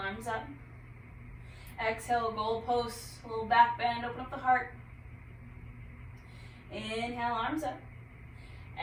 up. Exhale, goalpost, little back bend, open up the heart. Inhale, arms up.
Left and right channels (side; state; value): both; identical; correlation 1.00